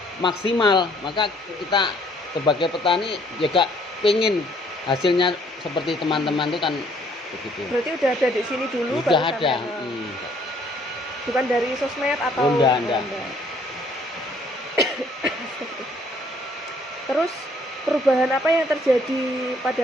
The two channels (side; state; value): both; normal; correlation 0.63